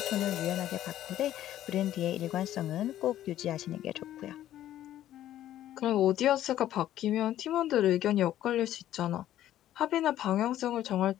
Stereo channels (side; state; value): right; quieter; 12.5 dB